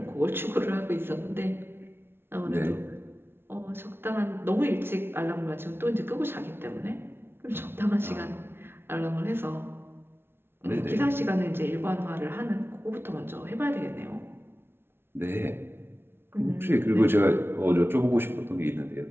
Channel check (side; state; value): left; late; 0.11 ms